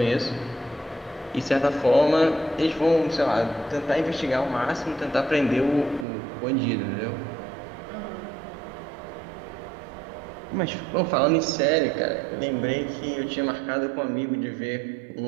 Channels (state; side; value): drops out; left; at 6.1 s